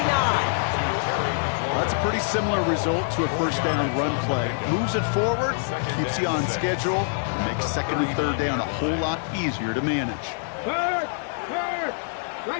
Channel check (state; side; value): silent; right; digital silence